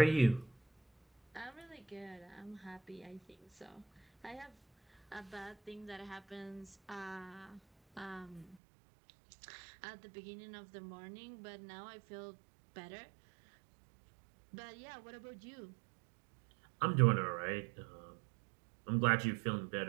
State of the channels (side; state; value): left; drops out; at 8.6 s